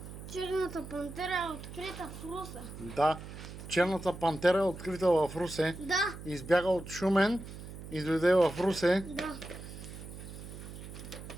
Черната пантера е открита в Русе. Да. Черната пантера е открита в Русе. Да, Избяга от Шумен и дойде в Русе. да.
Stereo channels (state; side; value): noise; right; hum, 12 dB below the sound